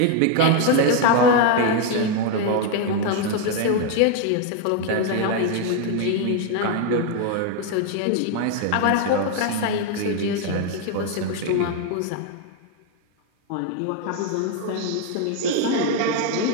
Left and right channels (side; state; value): both; different; correlation 0.01